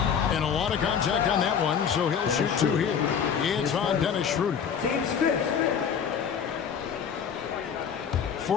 And a lot of contact on that one, so he'll shoot 2 here. It's on Dennis Schroeder. Team's fifth.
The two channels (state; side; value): quieter; right; 7.4 dB